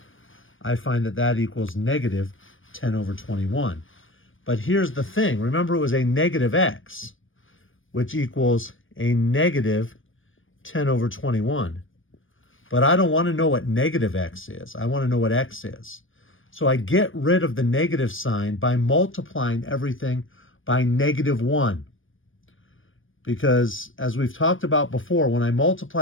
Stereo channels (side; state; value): right; late; 0.58 ms